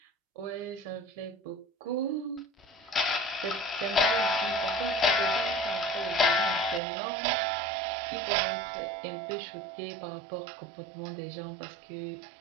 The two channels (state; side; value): drops out; left; at 6.8 s